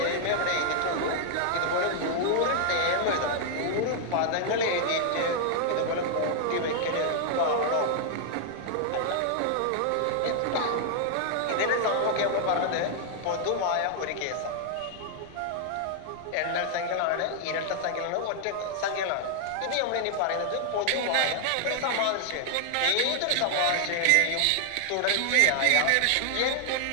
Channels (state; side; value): different; both; correlation 0.00